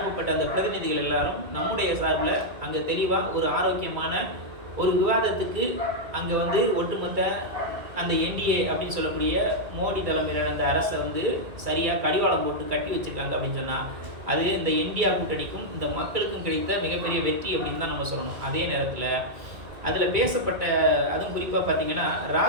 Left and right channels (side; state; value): left; late; 2.3 ms